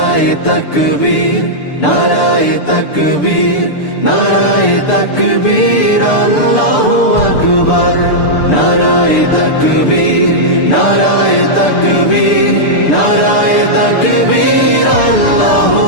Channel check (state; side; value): late; right; 6.8 ms